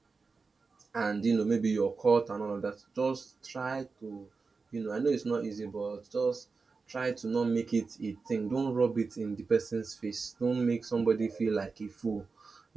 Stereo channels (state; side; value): quieter; left; 4.4 dB